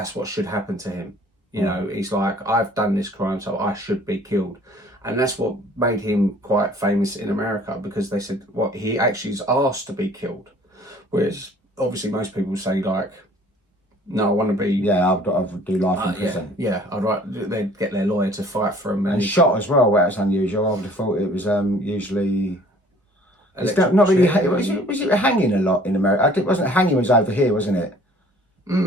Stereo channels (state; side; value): normal; both; correlation 0.53